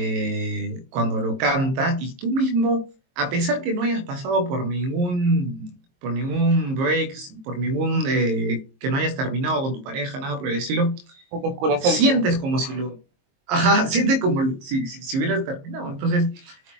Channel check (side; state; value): left; late; 22 ms